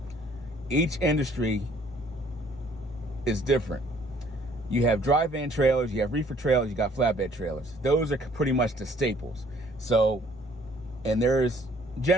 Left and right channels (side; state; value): both; normal; correlation 0.60